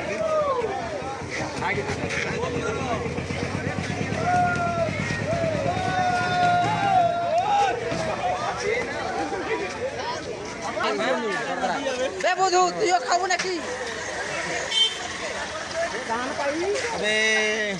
বধু তুইও খাবো নাকি?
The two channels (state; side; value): identical; both; correlation 1.00